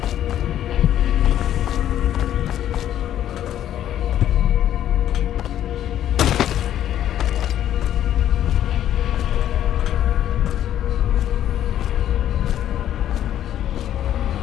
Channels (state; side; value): quieter; right; 11.3 dB